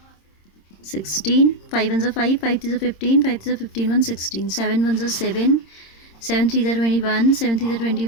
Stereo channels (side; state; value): right; late; 26 ms